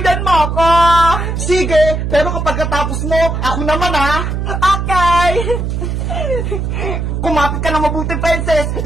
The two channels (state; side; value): noise; right; hum, 2 dB below the sound